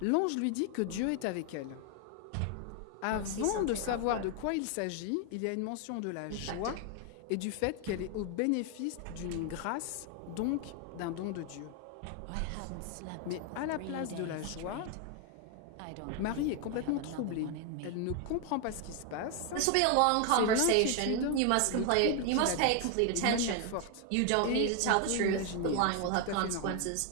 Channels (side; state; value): both; different; correlation 0.01